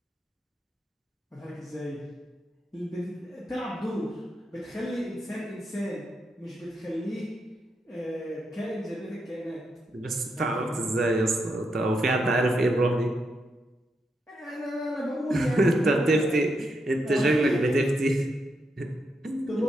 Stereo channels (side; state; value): both; normal; correlation 0.82